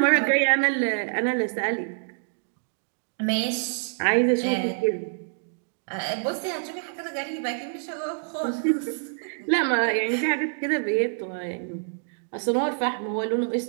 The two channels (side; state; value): left; silent; digital silence